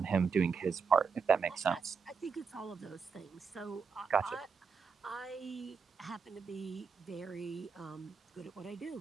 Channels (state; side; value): quieter; left; 5.6 dB